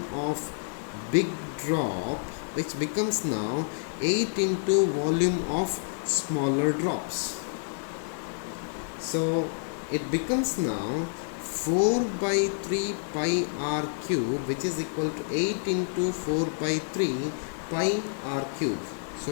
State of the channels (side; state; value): right; silent; digital silence